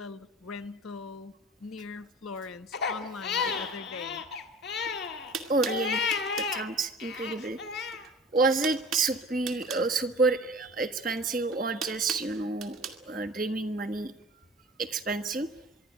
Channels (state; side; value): normal; both; correlation 0.42